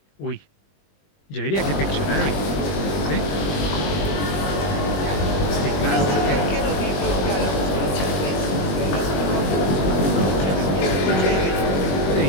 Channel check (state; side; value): late; right; 21 ms